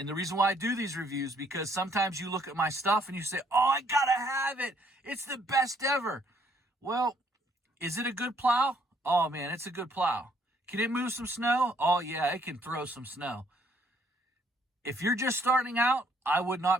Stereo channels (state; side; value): normal; both; correlation 0.66